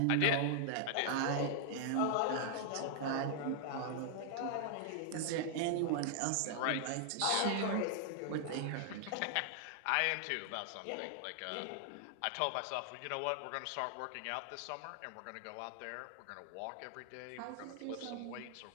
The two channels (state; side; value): different; both; correlation 0.00